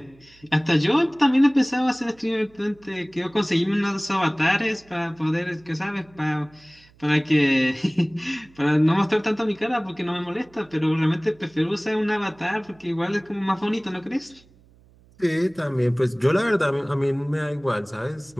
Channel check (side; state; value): right; noise; hum, 28 dB below the sound